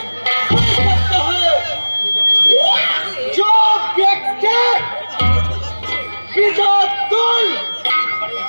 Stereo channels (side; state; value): both; inverted; correlation -1.00